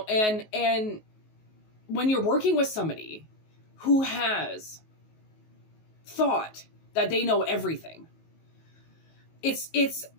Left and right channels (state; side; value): late; right; 19 ms